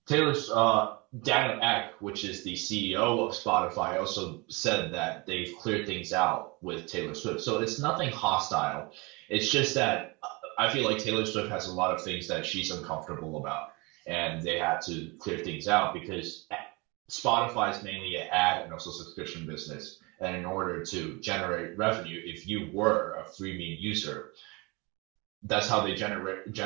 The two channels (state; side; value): quieter; left; 26.9 dB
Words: Taylor's Daniel Ek, which is the CEO of Spotify, also said that they've cleared things out with Taylor Swift. So it's nothing hostile. It's just that I feel like Taylor Swift has a lot of things that she's uncomfortable about, and they had to clear things out because Spotify is mainly an ad and also subscription business. And in order to generate revenue, if you were a freemium user, that's how they